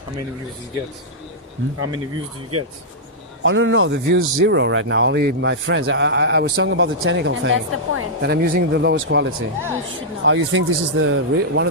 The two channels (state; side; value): normal; both; correlation -0.10